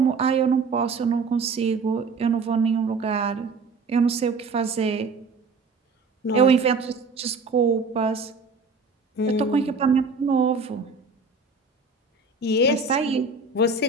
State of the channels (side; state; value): left; quieter; 4.2 dB